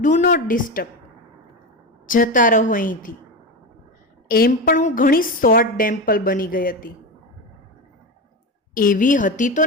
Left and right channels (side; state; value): both; normal; correlation 0.19